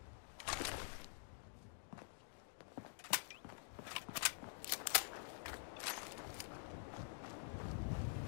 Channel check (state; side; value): silent; right; digital silence